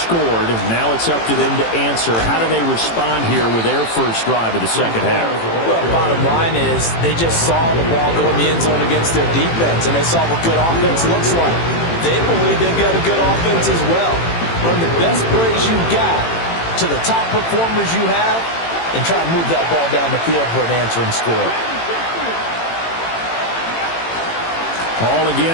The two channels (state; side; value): late; right; 18 ms